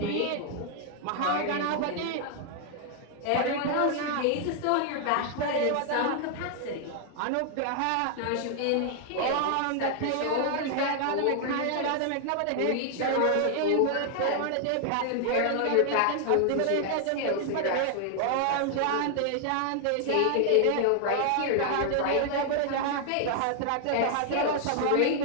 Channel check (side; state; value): both; different; correlation 0.00